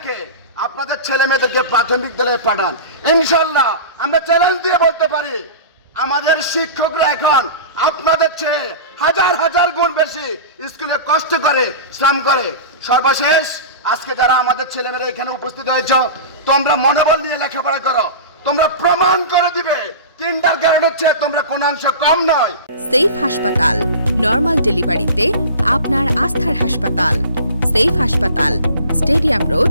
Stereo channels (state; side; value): inverted; both; correlation -0.33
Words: আপনাদের ছেলে মেয়েদেরকে প্রাথমিক বিদ্যালয়ে পাঠান। ইনশাল্লাহ আমরা চ্যালেঞ্জ দিয়ে বলতে পারি, আমাদের শিক্ষকরা এখন আপনাদের চেয়ে হাজার হাজার গুণ বেশি স্কুলে কষ্ট করে, শ্রম করে। সর্বশেষ, আজকে যারা আমাদের ছেলেমেয়েরা এখানে উপস্থিত হয়েছ, তোমরা মনোবল নিয়ে লেখাপড়া করো, তোমরা প্রমাণ করে দিবে কিন্ডারগার্টেনের চেয়ে তোমরা কোন অংশ কম নয়। সেফ হাসপাতাল, নরমাল ডেলিভারিতে আপনার আস্থার হাসপাতাল। সেফ হাসপাতাল, স্টেডিয়াম